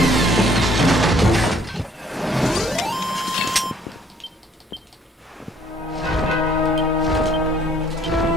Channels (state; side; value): normal; both; correlation 0.61